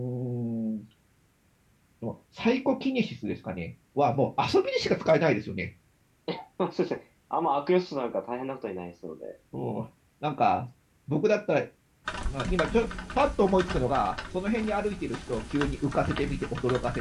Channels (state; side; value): identical; both; correlation 1.00